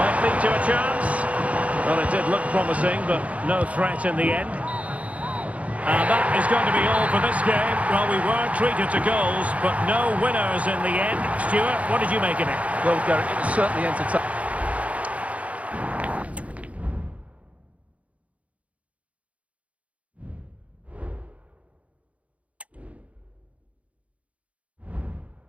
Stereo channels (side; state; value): left; late; 0.066 ms